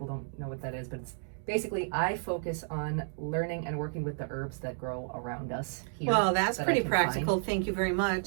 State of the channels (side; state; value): left; silent; digital silence